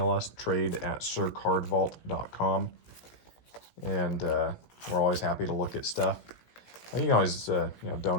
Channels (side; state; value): right; late; 17 ms